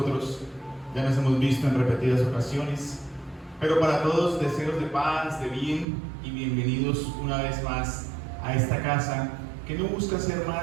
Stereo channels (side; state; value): left; drops out; at 5.9 s